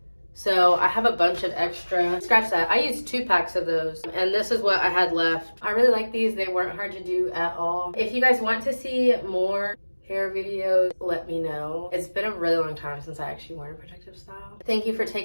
So I have a bunch of extra. Scratch that. I used 2 packs of those. And this is what I had left. I really like these. They weren't hard to do at all. If you guys want to see more hair videos, let me know. It's been a really long time since I actually worn a protective style. Thank you for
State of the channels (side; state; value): both; inverted; correlation -1.00